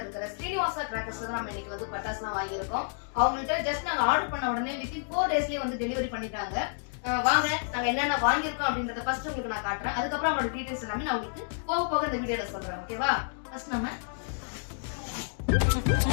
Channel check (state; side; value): silent; right; digital silence